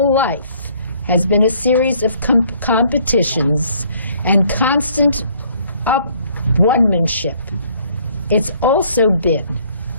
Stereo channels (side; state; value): both; inverted; correlation -0.62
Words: life has been a series of competitions and constant one-manship, it's also been